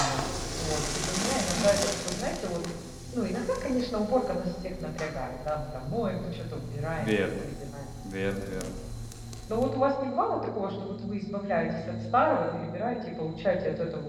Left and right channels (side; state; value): both; identical; correlation 1.00